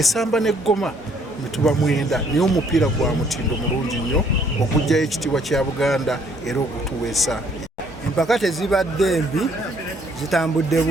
n'eggoma mituba 9, naye omupiira gwa mutindo mulungi nnyo okugjayo ekitiibwa kya Buganda era okutuweesa. Empaka tezibadde mbi, zitambudde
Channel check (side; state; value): both; normal; correlation 0.64